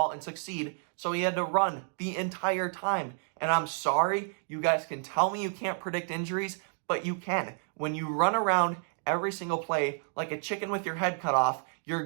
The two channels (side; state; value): left; silent; 58 dB below the other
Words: and succeed, so he had to run the entire time. And I'm sorry, you guys can tell me you can't predict injuries, but you can. When you run around every single play like a chicken with your head cut off,